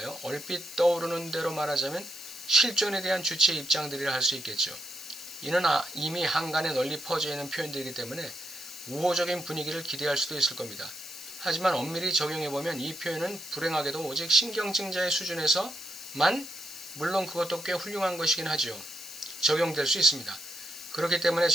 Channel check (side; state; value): left; noise; hiss, 12 dB below the sound